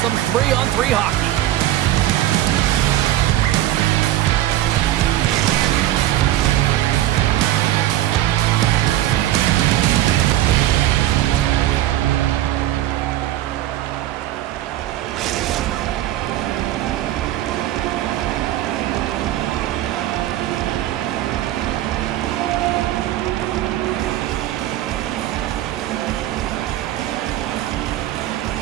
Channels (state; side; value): quieter; left; 14.0 dB